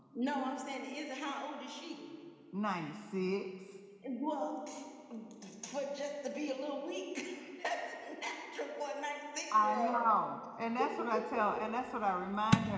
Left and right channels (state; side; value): identical; both; correlation 1.00